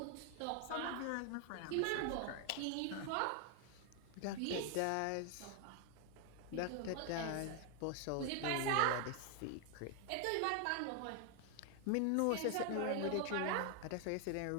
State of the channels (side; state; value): both; different; correlation 0.00